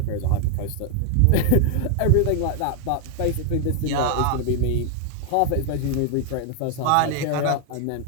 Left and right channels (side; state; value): both; different; correlation 0.00